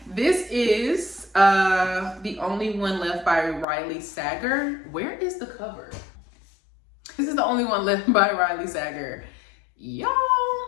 This is The Only One Left by Riley Sager. Where is the cover? This is The Only One Left by Riley Sager. Y'all,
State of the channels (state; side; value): drops out; right; at 3.7 s